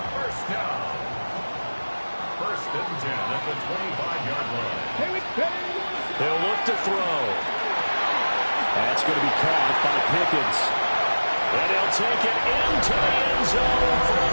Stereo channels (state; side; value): inverted; both; correlation -1.00